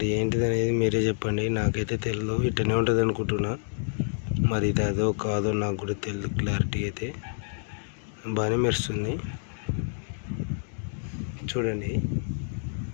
ఏంటిది అనేది మీరే చెప్పండి. నాకైతే తెలియదు, ఇట్టనే ఉంటుంది అనుకుంటున్నా. మరి ఇది అదో కాదో నాకు కూడా తెలియదు. క్లారిటీ అయితే బాగానే మెరుస్తుంది. చూడండి,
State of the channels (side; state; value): right; silent; digital silence